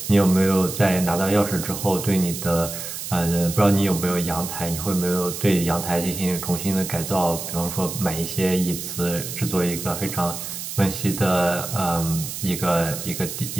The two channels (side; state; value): right; noise; hiss, 7 dB below the sound